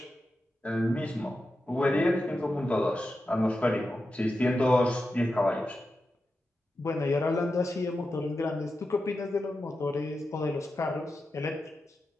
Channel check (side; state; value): both; normal; correlation 0.90